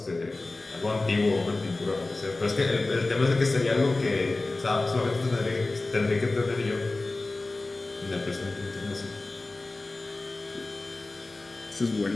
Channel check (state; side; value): quieter; right; 3.2 dB